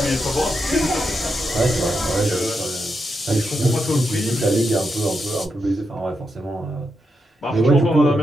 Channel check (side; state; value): both; normal; correlation 0.84